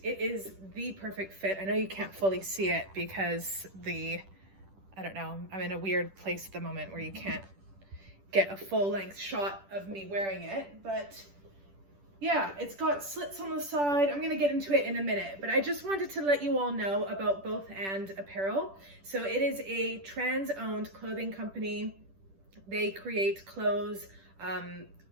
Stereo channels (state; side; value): late; left; 10 ms